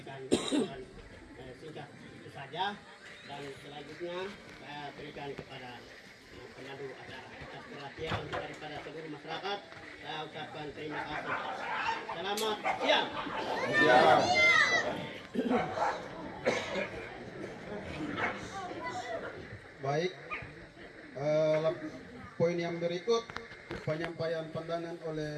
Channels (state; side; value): identical; both; correlation 1.00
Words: singkat itu saja. Dan selanjutnya saya berikan kepada pemandu acara atas perhatian daripada seluruh masyarakat. Saya ucapkan terima kasih. Selamat siang. Baik, poin yang berikut penyampaian pandangan